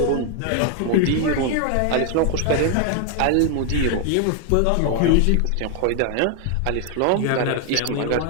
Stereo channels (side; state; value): both; different; correlation 0.00